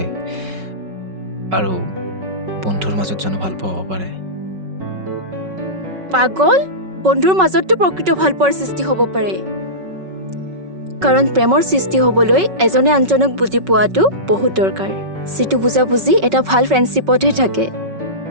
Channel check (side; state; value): left; late; 5.3 ms